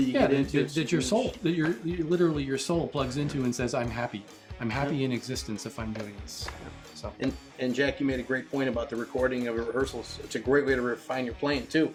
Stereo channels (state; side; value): identical; both; correlation 1.00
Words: you get into, that your soul, literally your soul plugs into and says, I'm happy. I'm happy in existence if I'm doing this. So. And Jack, you made a great point about the recording of rehearsals. It's a great way to refine your playing too.